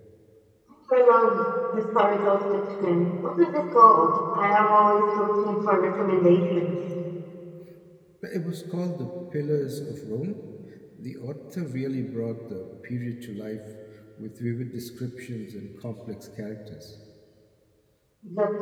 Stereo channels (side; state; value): both; identical; correlation 1.00